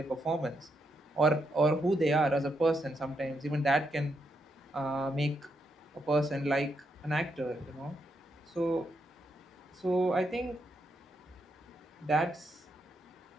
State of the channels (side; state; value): both; normal; correlation 0.80